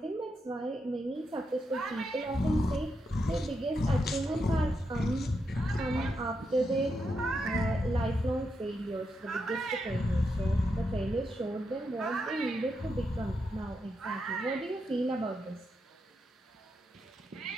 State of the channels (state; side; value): normal; both; correlation 0.83